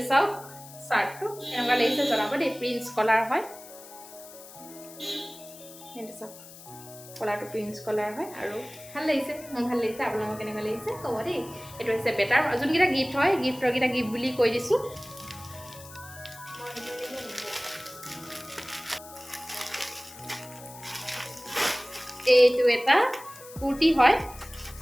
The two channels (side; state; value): left; noise; hiss, 17 dB below the sound